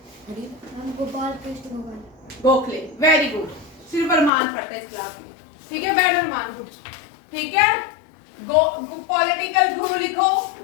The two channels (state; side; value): drops out; right; at 4.3 s